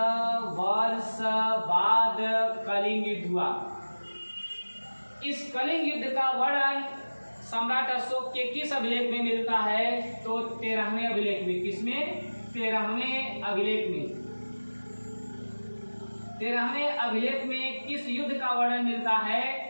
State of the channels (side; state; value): both; inverted; correlation -1.00